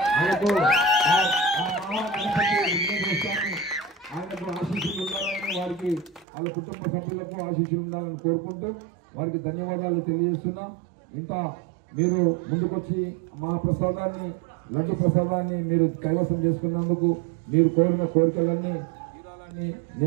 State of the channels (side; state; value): left; drops out; at 6.2 s